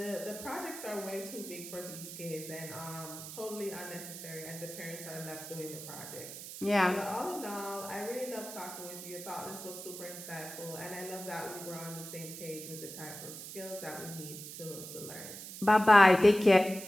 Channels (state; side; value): noise; right; hiss, 11 dB below the sound